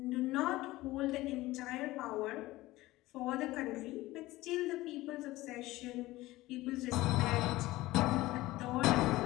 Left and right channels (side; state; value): right; quieter; 18.2 dB